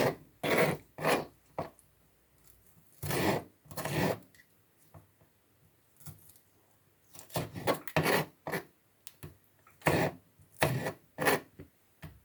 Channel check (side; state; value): both; identical; correlation 1.00